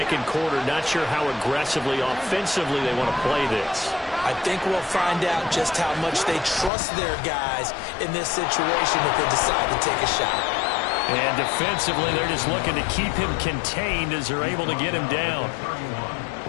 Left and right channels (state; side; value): drops out; right; at 6.7 s